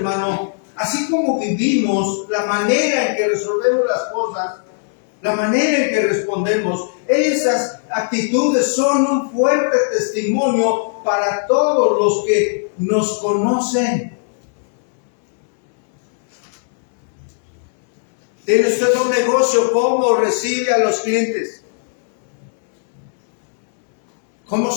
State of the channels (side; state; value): right; silent; 64 dB below the other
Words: así como vivimos, la manera en que resolvemos las cosas, la manera en que respondemos, esas actitudes son un fuerte testimonio para todos los que nos conocen. ¿Tiene usted un negocio? ¿Cómo recibe a los clientes? ¿Cómo